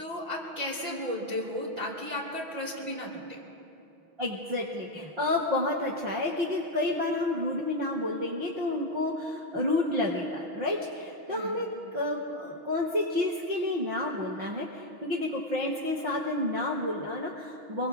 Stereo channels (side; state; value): left; late; 6.2 ms